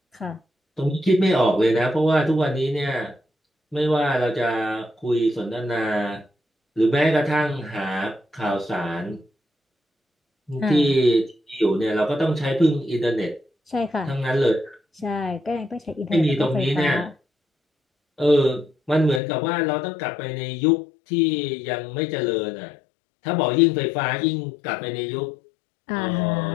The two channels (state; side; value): drops out; right; at 19.2 s